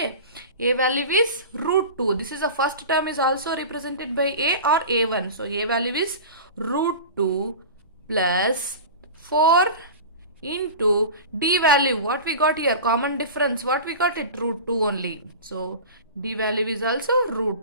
A value is root 2. This is the first term is also represented by A or A1. So A value is root 2 plus 4 into D value. What we got here? Common difference. What we got it? Root 2 only. So D value is also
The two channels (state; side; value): inverted; both; correlation -0.33